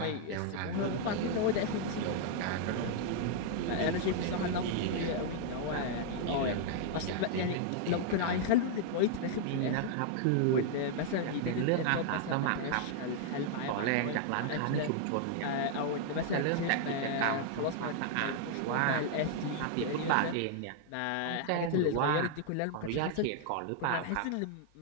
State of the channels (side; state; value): both; different; correlation 0.00